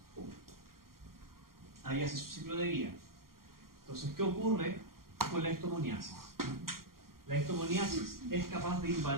Ahí hace su ciclo de vida. Entonces, ¿qué ocurre con la histomoniasis? La histomoniasis es capaz de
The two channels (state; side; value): late; left; 0.92 ms